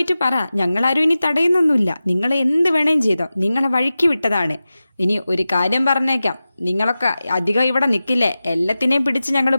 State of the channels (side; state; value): both; inverted; correlation -0.95